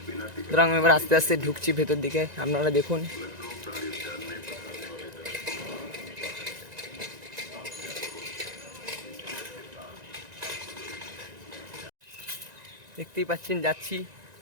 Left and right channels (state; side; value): late; left; 1.9 ms